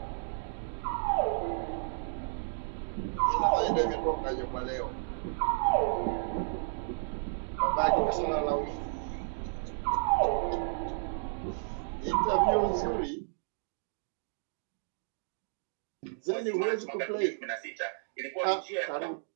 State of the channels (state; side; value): silent; left; digital silence